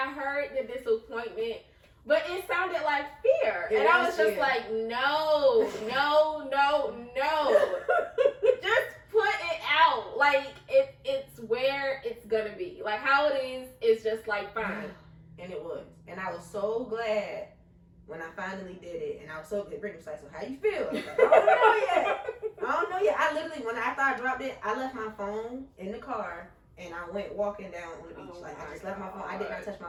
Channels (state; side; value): identical; both; correlation 1.00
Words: heard the disappointment. But it sounded like fear. And I was just like, no. Just put it out. Like, it's where it's going to be. Like, how it is just like fine. And it was. And I was so glad when I finally did it. And I was so good. Brittany was like, so how you feel? I was like, I don't know yet. I literally, after I dropped it, I left my phone in the car. And I went walking down on the beach. I just left my phone. I did not touch